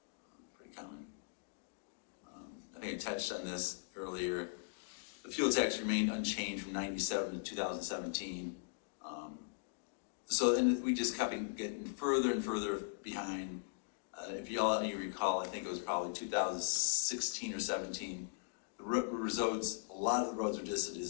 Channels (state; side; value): silent; right; digital silence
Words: Pretty common. I think I touched on this earlier. The fuel tax remained unchanged from 97 to 2017. And we just kept getting further and further behind. If you recall, I think it was probably 2016 or 17. A lot of the roads were just a